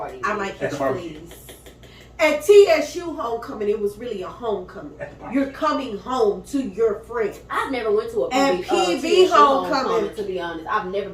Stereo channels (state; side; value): identical; both; correlation 1.00